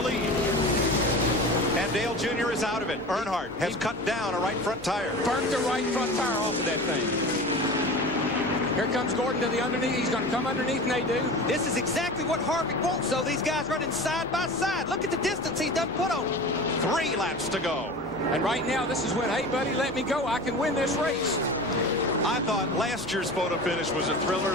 And Dale Jr. is out of it. Earnhardt has cut down a right front tire. Burnt the right front tire off of that thing. Here comes Gordon to the underneath. He's going to come underneath Nadeau. This is exactly what Harvick wants, though. These guys running side by side. Look at the distance he's done put on. 3 laps to go. And right now, this is when, hey, buddy, let me go. I can win this race. I thought last year's photo finish was a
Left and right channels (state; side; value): noise; left; hum, 22 dB below the sound